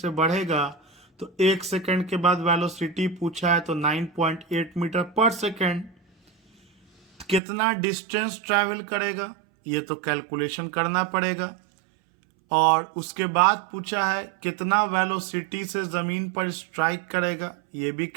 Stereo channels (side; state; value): left; drops out; at 7.4 s